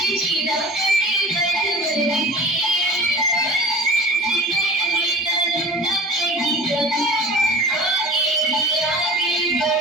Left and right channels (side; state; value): both; normal; correlation 0.39